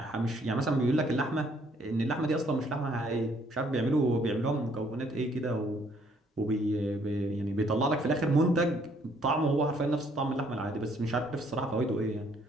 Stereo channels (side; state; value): both; normal; correlation 0.65